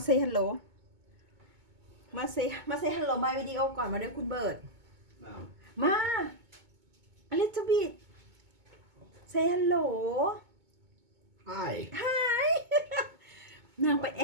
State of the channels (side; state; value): left; late; 2.2 ms